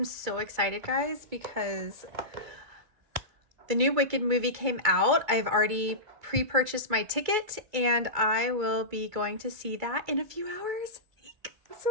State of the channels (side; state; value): left; late; 2.3 ms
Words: so excited, guys, because the new Wicked movie came out. I've already pre-purchased my ticket and I will be going to see that in a few hours. I'm so